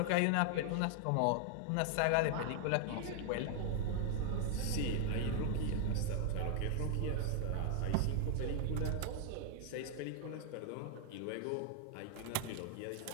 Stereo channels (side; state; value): both; different; correlation 0.00